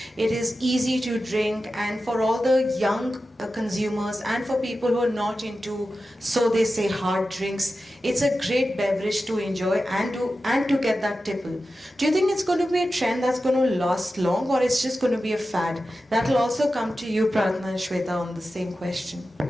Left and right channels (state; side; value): normal; both; correlation 0.93